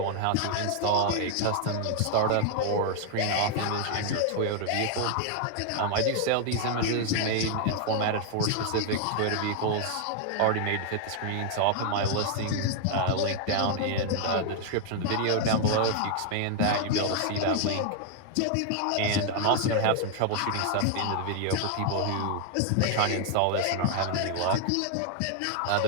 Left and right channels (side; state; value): both; different; correlation 0.00